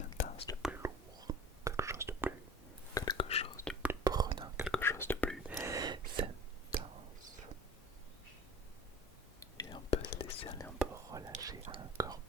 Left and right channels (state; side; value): normal; both; correlation 0.41